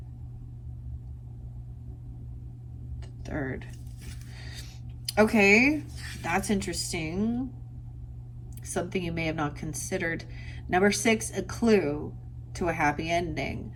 The third. Okay, that's interesting. Something you may have not considered. Number 6, a clue to a happy ending.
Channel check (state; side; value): identical; both; correlation 1.00